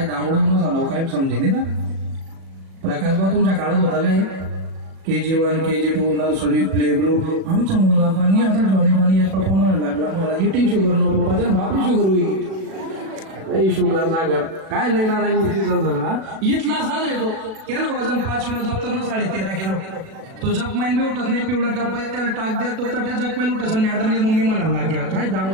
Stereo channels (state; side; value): late; left; 37 ms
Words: दांगडून झालं काय समजेल ना. प्रकाशबा तुमच्या काळात होता काय? KG1 KG2 nursery play group. आमचा मुलगा पाणी आता जॉनी पप्पा म्हणायला लागला मला इटिंग शुगर नको पप्पा, तर बापरी शुगर होईल. शुगर जागर काय लय ना झाला. इथला साज येतो केलं वजन 5 किलो, दप्तर 13.5 किलो. तो जपमाईन बी उठत नाही, पिवळा टप्पा त्याला टाक द्या तो त्या जपमाईन उठत. मॅडमने मम्मी म्हणायला लागल्या काय